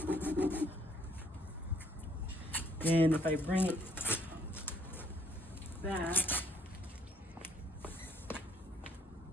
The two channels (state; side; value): normal; both; correlation 0.64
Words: And if I bring it back,